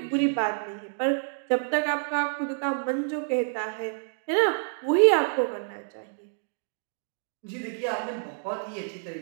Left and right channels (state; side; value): silent; left; digital silence